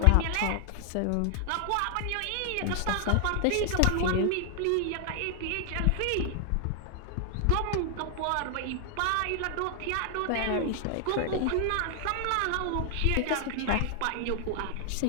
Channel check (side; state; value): both; different; correlation 0.00